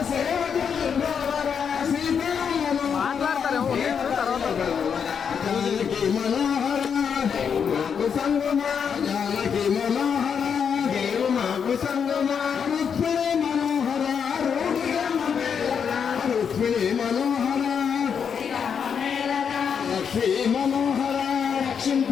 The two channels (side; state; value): right; quieter; 7.0 dB